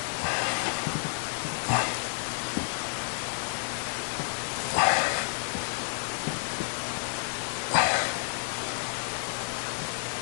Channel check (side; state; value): right; silent; digital silence